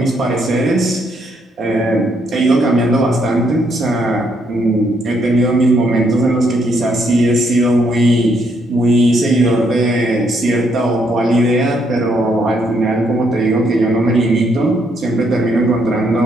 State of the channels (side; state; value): both; normal; correlation 0.73